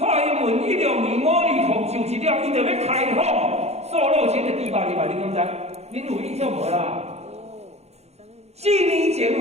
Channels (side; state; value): left; late; 0.31 ms